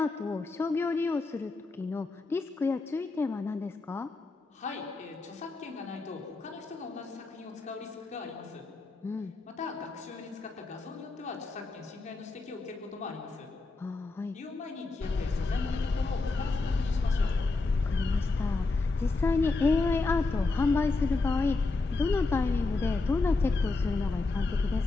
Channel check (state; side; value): quieter; right; 3.6 dB